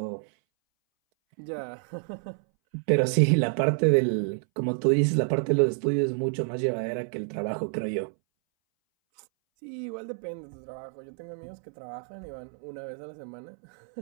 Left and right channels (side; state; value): left; silent; 59 dB below the other